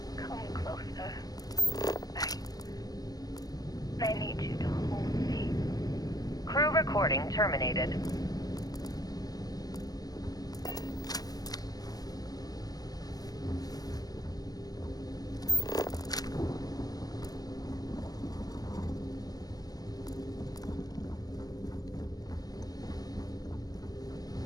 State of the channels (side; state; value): right; late; 0.18 ms